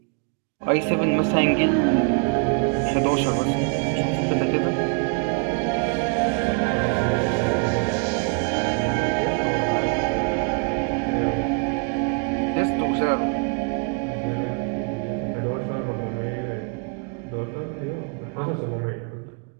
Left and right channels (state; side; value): quieter; left; 37.4 dB